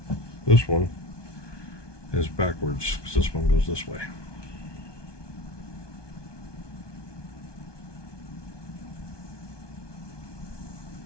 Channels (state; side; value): late; right; 1.2 ms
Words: this one is backwards because this one goes this way.